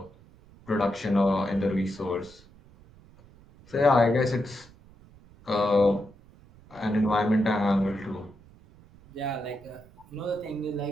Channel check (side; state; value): right; noise; rumble, 25 dB below the sound